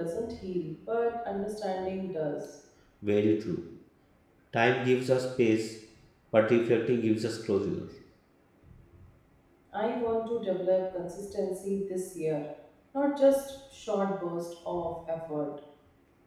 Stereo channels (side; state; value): both; identical; correlation 1.00